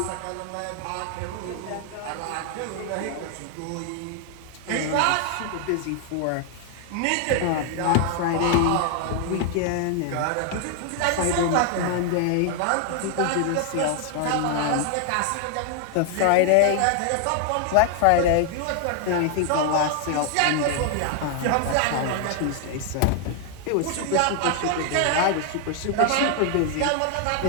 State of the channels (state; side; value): different; both; correlation 0.00